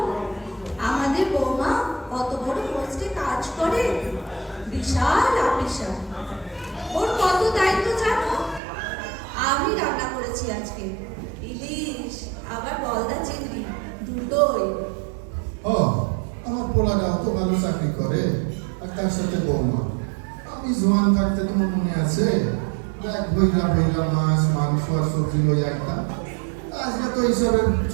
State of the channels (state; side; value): drops out; left; at 8.6 s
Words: আমাদের বৌমা কত বড় পোস্টে কাজ করে, বিশাল অফিসার। ওর কত দায়িত্ব জানো? আমি রান্না করেছি আজকে ইলিশ, আবার গলদা চিংড়ি, দুটোই। ও, আমার পোলাটা অত ভালো চাকরি করে, আর তার সাথে বৌমা। আমি জোয়ান থাকতে তোমার মনে আছে, এক ভৈরা ভৈরা মাছ মাংস আর সবজি লই একটা। আজকে তো এইসবের